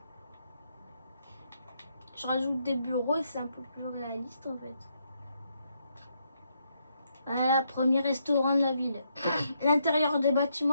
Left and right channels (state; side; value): inverted; both; correlation -0.77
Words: Je rajoute des bureaux et c'est un peu plus réaliste en fait. Voilà, premier restaurant de la ville. L'intérieur des